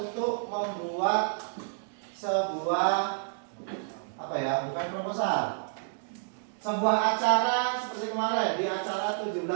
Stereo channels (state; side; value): silent; left; digital silence